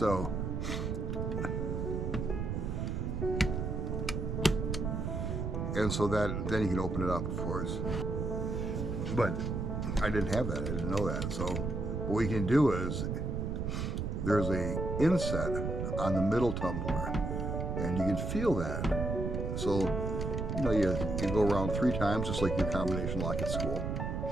And so that then you can open it up, of course. But I didn't have that. I didn't know that. So what we can do is there's a inset on the middle tumbler, and you can feel that. So you go around 3 times, just like your combination lock at school.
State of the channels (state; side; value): noise; right; rumble, 2 dB below the sound